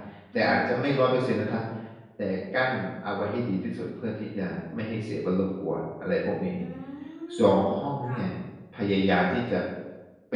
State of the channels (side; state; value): both; identical; correlation 1.00